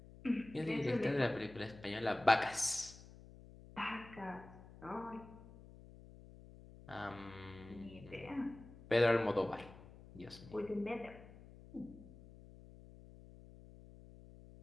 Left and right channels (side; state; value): left; noise; hum, 18 dB below the sound